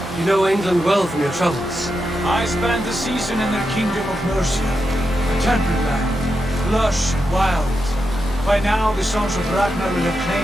You know England well from your travels. I spent a season in their kingdom of Mercia, a temperate land, lush and wild. By now, the Sons of Ragnar will have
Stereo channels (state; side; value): normal; both; correlation 0.87